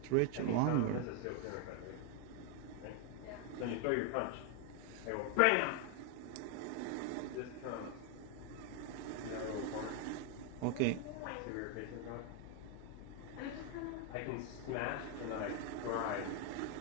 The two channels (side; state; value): both; different; correlation 0.01